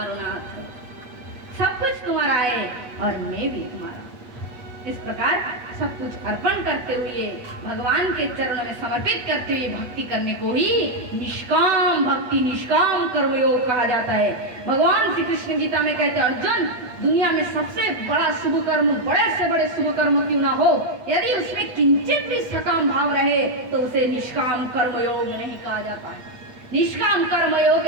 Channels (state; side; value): late; left; 8.1 ms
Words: नाथ, सब कुछ तुम्हारा है और मैं भी तुम्हारा। इस प्रकार सब कुछ अर्पण करते हुए भगवान के चरणों में समर्पित करते हुए भक्ति करने को ही निष्काम भक्ति, निष्काम कर्मयोग कहा जाता है। भगवान श्री कृष्ण गीता में कहते हैं अर्जुन, दुनिया में सबसे बड़ा शुभ कर्म, बड़े से बड़े शुभ कर्म क्यों ना हो, यदि उसमें किंचित भी सकाम भाव रहे तो उसे निष्काम कर्मयोग नहीं कहा जाता है। निष्काम कर्मयोग